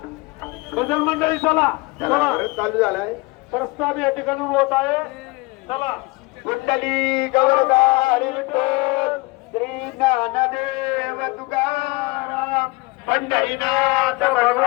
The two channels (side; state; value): right; quieter; 24.9 dB